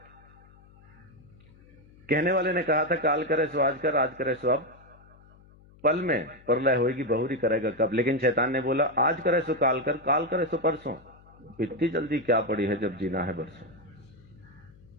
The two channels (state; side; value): noise; left; hum, 25 dB below the sound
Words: कहने वाले ने कहा था काल करे सो आज कर, आज करे सो अब, पल में प्रलय होगी, बहुरी करेगा कब। लेकिन शैतान ने बोला आज करे सो काल कर, काल करे सो परसों। इतनी जल्दी क्या पड़ी है जब जीना है बरसों।